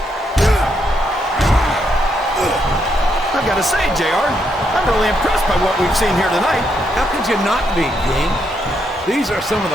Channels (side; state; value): both; normal; correlation 0.78